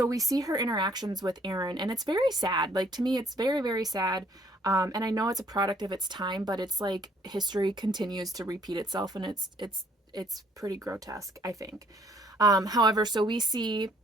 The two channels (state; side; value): normal; both; correlation 0.63